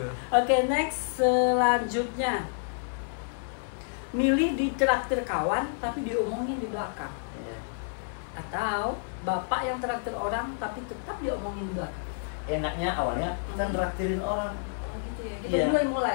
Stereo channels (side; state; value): right; silent; digital silence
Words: Oke, next selanjutnya. Milih ditraktir kawan tapi diomongin di belakang. Atau bapak yang traktir orang tapi tetap diomongin di belakang. Enaknya awalnya kita traktirin orang. Gitu ya. Kita